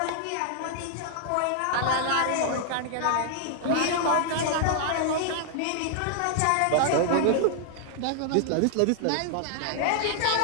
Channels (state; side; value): different; both; correlation 0.00